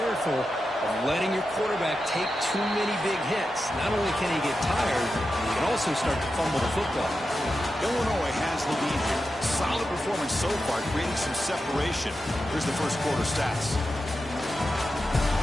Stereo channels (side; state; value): both; normal; correlation 0.90